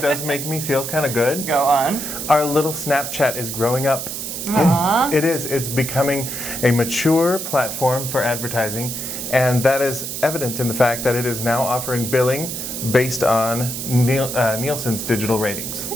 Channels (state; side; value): noise; right; hiss, 6 dB below the sound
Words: does make me feel kind of good? Go on. Our little Snapchat is growing up. Aww. It is. It's becoming a mature platform for advertising, and that is evident in the fact that it is now offering billing based on Nielsen's digital ratings.